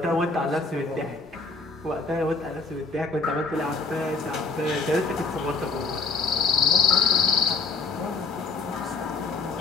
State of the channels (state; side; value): quieter; right; 4.1 dB